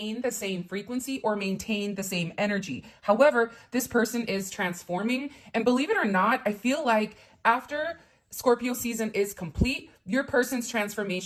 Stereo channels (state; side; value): identical; both; correlation 1.00